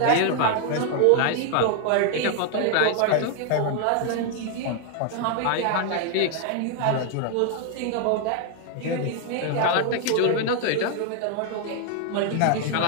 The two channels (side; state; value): both; different; correlation 0.00